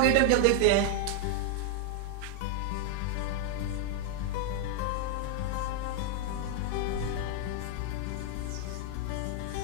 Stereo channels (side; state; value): both; different; correlation 0.00